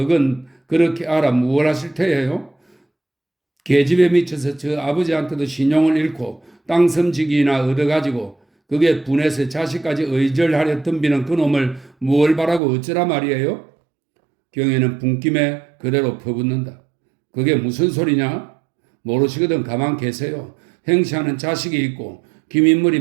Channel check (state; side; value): drops out; left; at 12.6 s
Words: 그렇게 알아 무얼 하실 테예요? 계집에 미쳐서 저 아버지한테도 신용을 잃고 땅섬지기나 얻어가지고 그게 분해서 자식까지 의절하려 덤비는 그놈을 무얼 바라고 어쩌라 말이에요? 경애는 분김에 그대로 퍼붓는다. 그게 무슨 소리냐? 모르시거든 가만 계세요. 행시하는 자식이 있고 김인물이